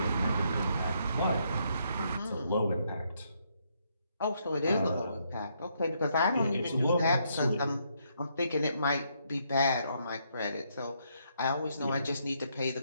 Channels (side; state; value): both; inverted; correlation -0.74